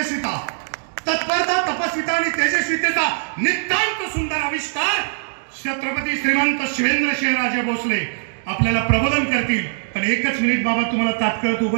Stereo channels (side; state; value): left; silent; digital silence